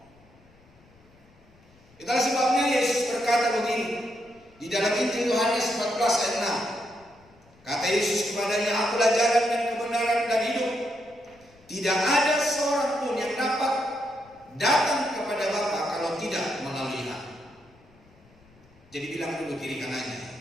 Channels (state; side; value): noise; left; rumble, 29 dB below the sound